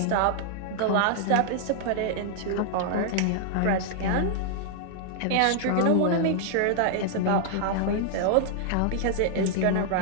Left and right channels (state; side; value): different; both; correlation -0.01